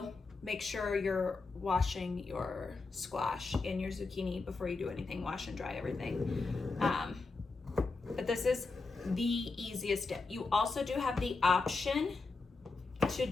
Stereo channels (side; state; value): right; quieter; 3.9 dB